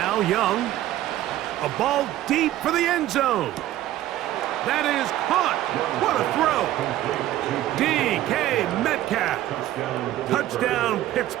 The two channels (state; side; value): quieter; left; 13.9 dB